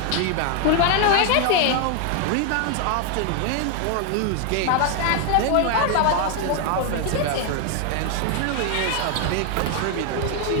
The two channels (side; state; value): both; different; correlation 0.01